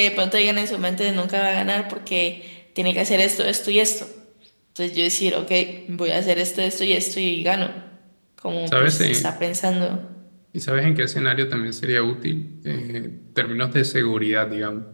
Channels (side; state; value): both; inverted; correlation -1.00